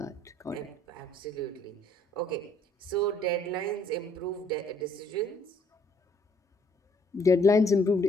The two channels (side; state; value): both; normal; correlation 0.63